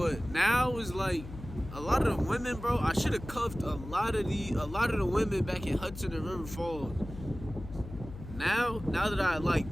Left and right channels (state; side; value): noise; left; hum, 12 dB below the sound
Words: now it's like, a lot of the women, bro, I should have cuffed a lot of the women back in Hudson and River Falls. Now that I like